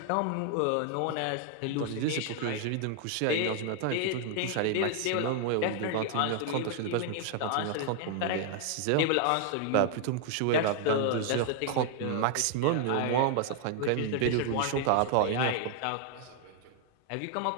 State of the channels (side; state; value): both; different; correlation 0.00